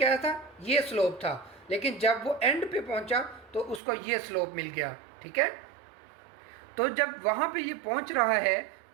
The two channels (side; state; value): left; drops out; at 3.8 s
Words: था, ये स्लोप था, लेकिन जब वो एंड पे पहुँचा तो उसको ये स्लोप मिल गया, ठीक है. तो जब वहाँ पे ये पहुँच रहा है